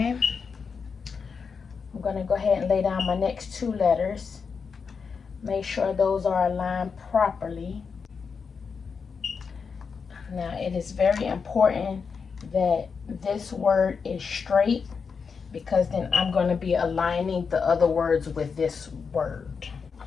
I'm going to go ahead and lay down my next 2 letters. Make sure those are aligned properly. Now, it is very important that this word is straight, because then I'm going to be aligning the other words with this word.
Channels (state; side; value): quieter; right; 5.6 dB